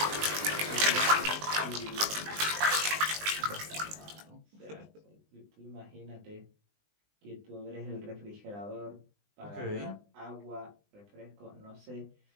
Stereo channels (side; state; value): left; late; 20 ms